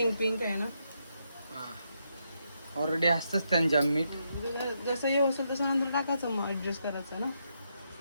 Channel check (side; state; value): both; inverted; correlation -0.80